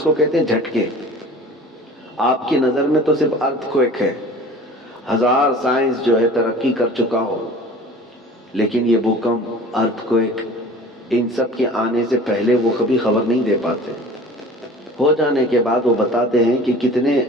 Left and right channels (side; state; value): both; normal; correlation 0.43